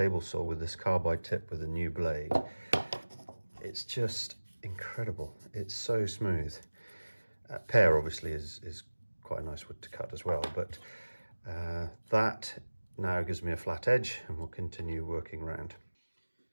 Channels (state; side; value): inverted; both; correlation -1.00